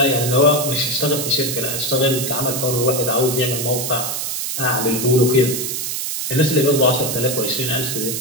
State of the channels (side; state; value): right; noise; hiss, 3 dB below the sound